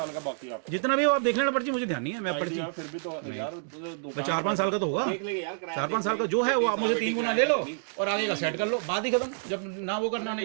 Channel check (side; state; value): left; silent; digital silence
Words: का बाकी आप जितना भी हो आप देख लेना पर्ची, मुझे ध्यान नहीं है। मैं पर्ची फिर भी तो यार 4-5 साल का तो होगा, 4-5 साल का जो है वो आप मुझे 3 गुना ले लो और आगे का सेट कर लो, बात ही खत्म। जब ना वो करना ना